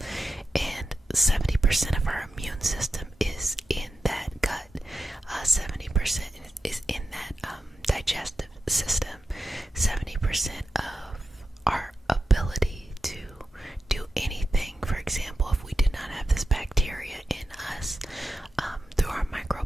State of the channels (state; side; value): normal; both; correlation 0.90